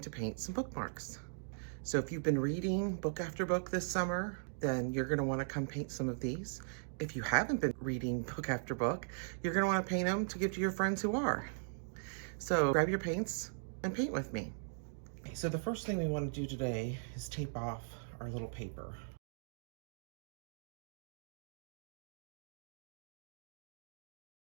to paint some bookmarks. So if you've been reading book after book this summer, then you're gonna wanna come paint some of these. If you haven't been reading book after book, you're gonna wanna paint them to give to your friends who are. So grab your paints and paint with me. So the first thing we wanna do today is tape off our little paper.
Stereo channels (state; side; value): silent; left; digital silence